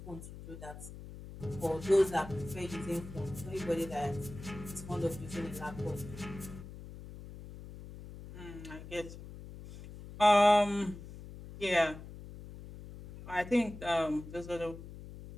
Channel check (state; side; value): noise; left; hum, 13 dB below the sound